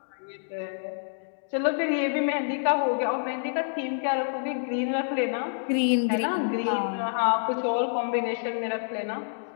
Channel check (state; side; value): silent; right; digital silence